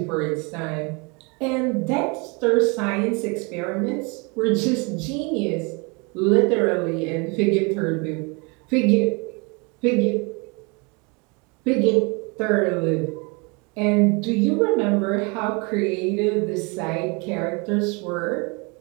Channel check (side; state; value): left; quieter; 30.2 dB